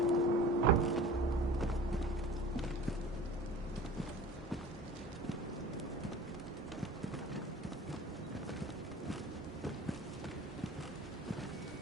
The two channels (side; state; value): both; normal; correlation 0.41